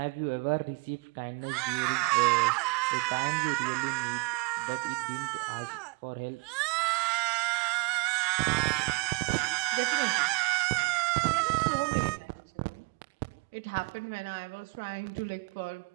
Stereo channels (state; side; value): quieter; left; 29.8 dB